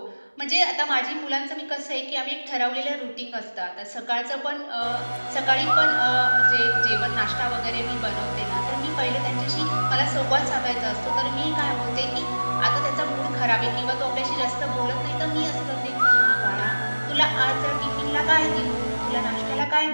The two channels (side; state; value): both; inverted; correlation -1.00